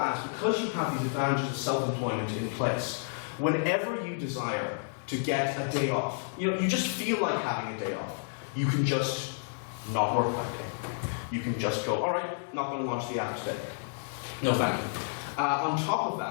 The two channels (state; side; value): silent; right; digital silence